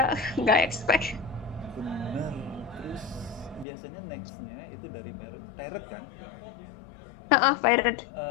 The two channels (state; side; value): drops out; right; at 3.7 s